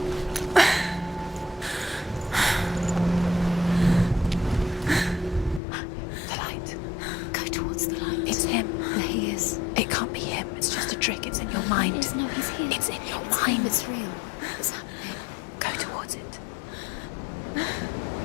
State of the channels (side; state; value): right; drops out; at 5.6 s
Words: The light. Go towards the light. It's him. There he is. It can't be him. It's just a trick. It's in your mind. No, he's here. It's in your mind. It's real. It's happening. Go towards it.